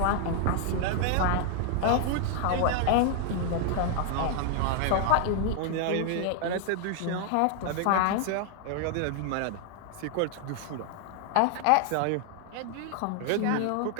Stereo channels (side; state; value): both; different; correlation 0.00